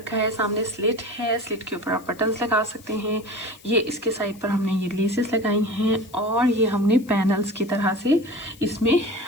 है, सामने स्लिट है, स्लिट के ऊपर आप बटन्स लगा सकते हैं। ये इसके साइड पर हमने ये लेसेस लगाई हैं और ये हमने पैनल्स की तरह से इसमें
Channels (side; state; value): left; noise; hiss, 24 dB below the sound